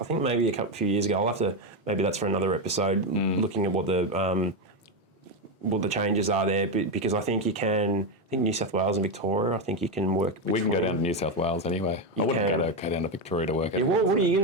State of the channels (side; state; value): both; normal; correlation 0.10